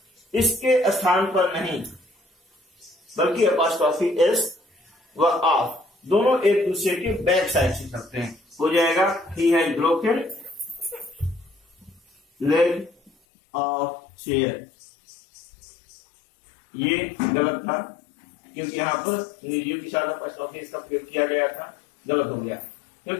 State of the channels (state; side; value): drops out; right; at 13.1 s